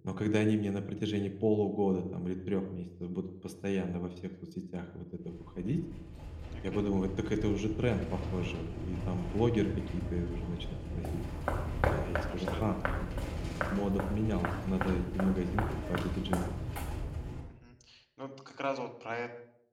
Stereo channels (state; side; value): identical; both; correlation 1.00